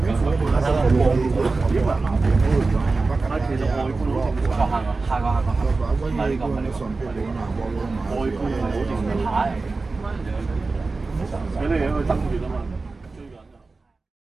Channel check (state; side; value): quieter; left; 3.8 dB